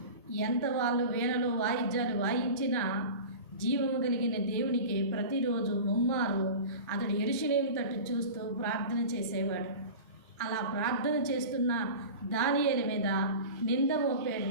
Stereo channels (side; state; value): both; inverted; correlation -0.33